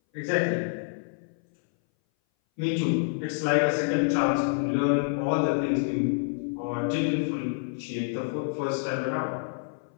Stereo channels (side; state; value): right; silent; 59 dB below the other